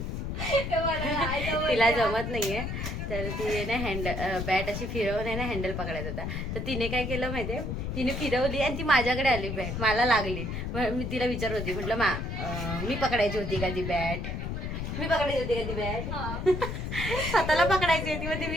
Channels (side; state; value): left; noise; rumble, 4 dB below the sound